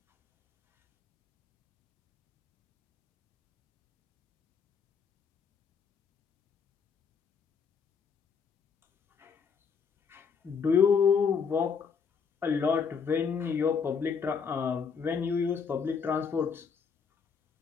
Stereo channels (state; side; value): quieter; right; 6.1 dB